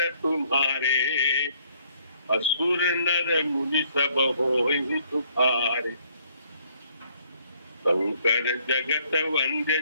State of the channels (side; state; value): both; inverted; correlation -0.65